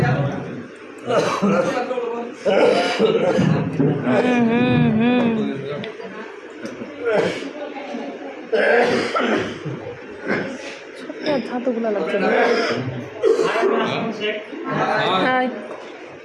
হাতগুলো লাগছে না।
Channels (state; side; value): identical; both; correlation 1.00